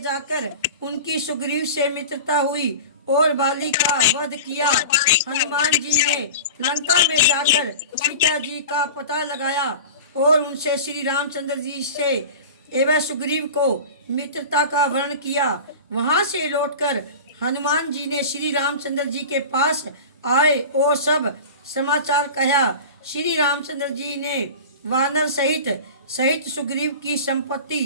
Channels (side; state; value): both; inverted; correlation -0.33